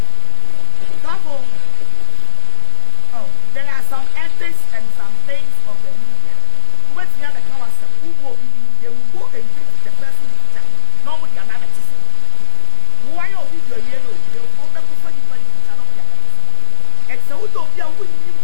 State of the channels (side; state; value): both; different; correlation 0.00